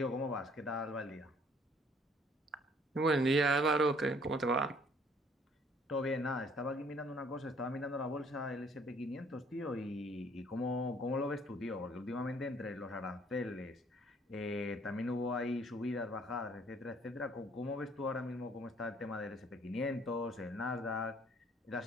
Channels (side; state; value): both; normal; correlation 0.60